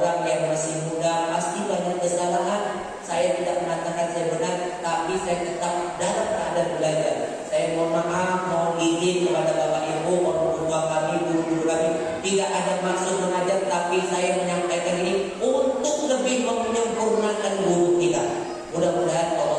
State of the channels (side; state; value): both; identical; correlation 1.00